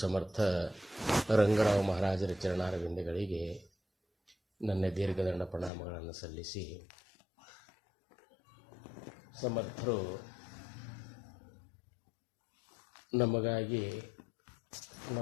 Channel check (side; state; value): right; drops out; at 5.7 s